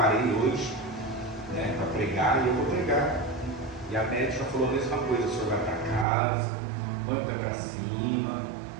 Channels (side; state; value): left; drops out; at 6.1 s